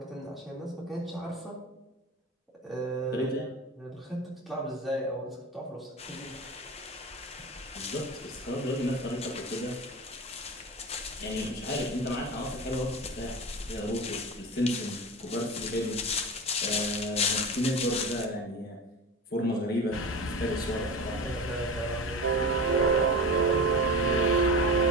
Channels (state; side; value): normal; both; correlation 0.29